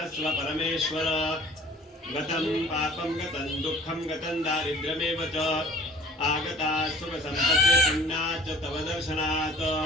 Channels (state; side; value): normal; both; correlation 0.49